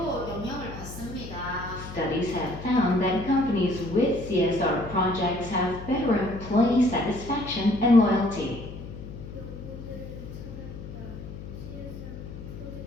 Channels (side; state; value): left; noise; hum, 11 dB below the sound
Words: 영향을 받습니다. Studies have found that companies with CSR projects have better employee satisfaction and loyalty. 연구들을 찾았다. CSR